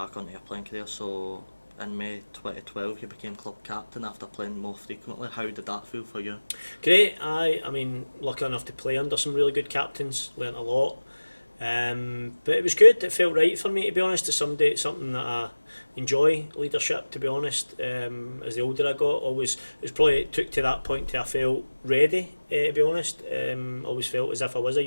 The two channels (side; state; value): both; inverted; correlation -1.00